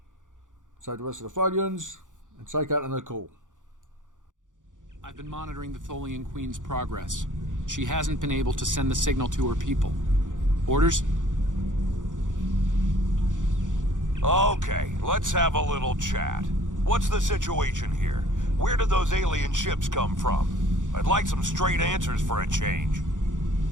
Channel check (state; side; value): late; left; 0.87 ms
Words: Save the rest of the Tholians, and take out the call. I've been monitoring the Tholian Queen's progress. She hasn't been able to send the signal to her people. Orders? Okay, let's have a little chat. What's the situation here? Where did those alien ships come from? I'd like some straight answers for a change.